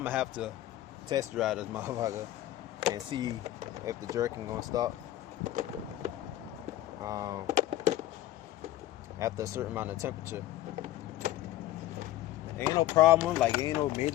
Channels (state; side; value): quieter; right; 14.5 dB